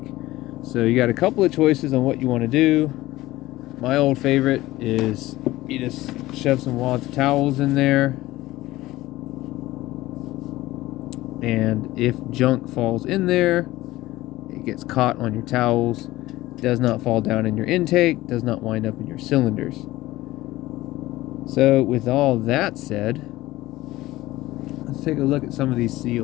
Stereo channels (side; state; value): right; quieter; 17.3 dB